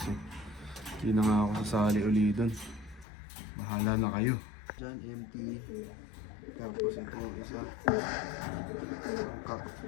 eh. Di na nga ako sasali uli dun. Bahala na kayo. Diyan empty. Tapos ito yung isa. Sangka.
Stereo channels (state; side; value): drops out; right; at 3.1 s